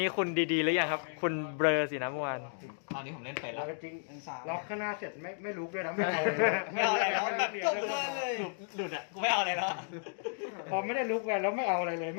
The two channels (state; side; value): silent; right; digital silence